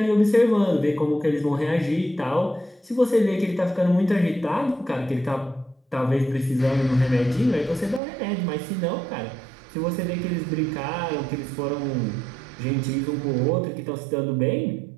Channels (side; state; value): left; drops out; at 8.0 s